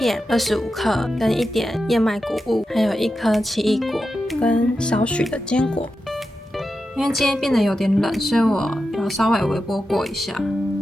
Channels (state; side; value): normal; both; correlation 0.90